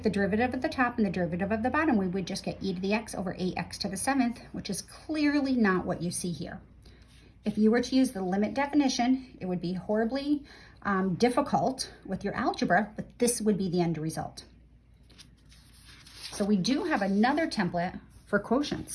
the derivative of the top and the derivative of the bottom, we would just get e to the x over 8x to the 7th, which is clearly not what you see here. If you were to use the limit definition, it would be horribly difficult with your algebra, but this would be the end result. So we do have another template for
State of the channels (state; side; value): identical; both; correlation 1.00